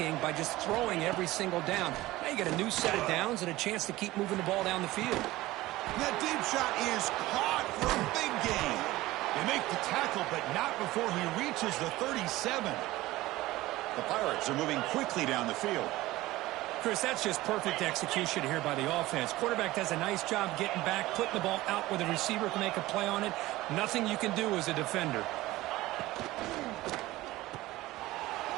by just throwing every single down. Now you got a new set of downs and a chance to keep moving the ball down the field. That deep shot is caught for a big gain. They make the tackle, but not before he reaches the 37. The Pirates are moving quickly down the field. Chris, that's just perfect execution here by the offense. Quarterback does a nice job getting back, putting the ball out where the receiver can make a play on it. Nothing you can do as a defender.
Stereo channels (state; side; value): quieter; left; 17.9 dB